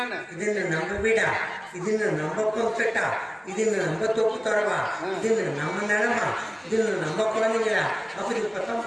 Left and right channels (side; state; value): both; identical; correlation 1.00